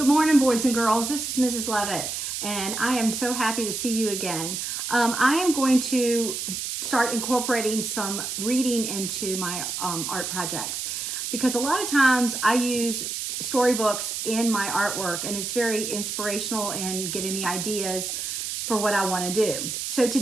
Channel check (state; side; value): noise; right; hiss, 4 dB below the sound